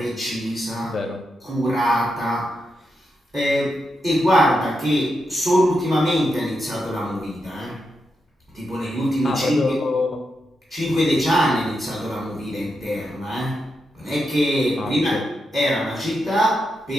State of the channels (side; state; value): both; normal; correlation 0.85